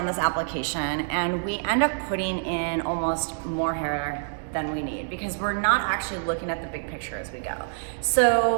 this application and we end up putting in almost more hair than we need because we're not actually looking at the big picture as we go.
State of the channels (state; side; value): silent; left; digital silence